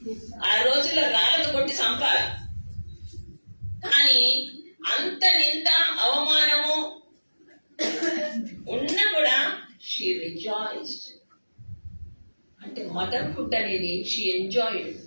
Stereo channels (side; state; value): both; inverted; correlation -1.00